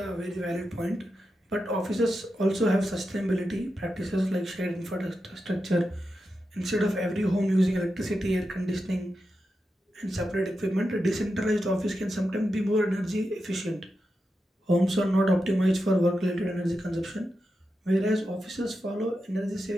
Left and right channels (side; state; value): both; normal; correlation 0.89